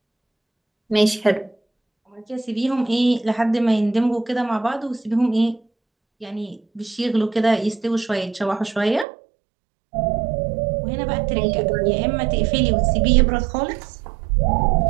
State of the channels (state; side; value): drops out; left; at 9.1 s